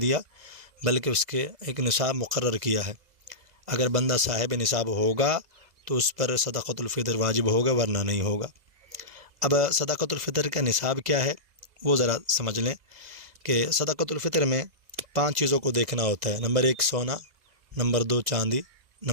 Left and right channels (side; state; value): left; late; 2.0 ms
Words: بلکہ اس کے ایک نصاب مقرر کیا ہے۔ اگر بندہ صاحب نصاب ہوگا تو اس پر صدقۃ الفطر واجب ہوگا، ورنہ نہیں ہوگا۔ اب صدقۃ الفطر کا نصاب کیا ہے وہ ذرا سمجھ لیں کہ صدقۃ الفطر میں 5 چیزوں کو دیکھنا ہوتا ہے۔ نمبر 1 سونا، نمبر 2 چاندی،